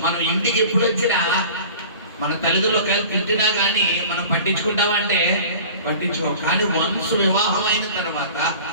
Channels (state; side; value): inverted; both; correlation -0.41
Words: మనం ఇంటికి ఎప్పుడు వచ్చినా మన తల్లిదండ్రులు ఒకవేళ తిట్టినా కానీ మనం పట్టించుకుంటామా అంటే పట్టించుకో. కానీ వన్స్ వివాహం అయిన తర్వాత